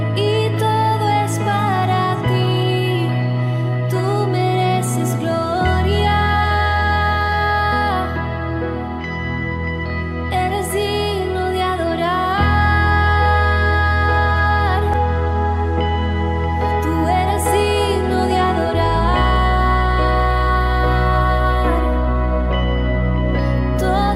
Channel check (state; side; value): identical; both; correlation 1.00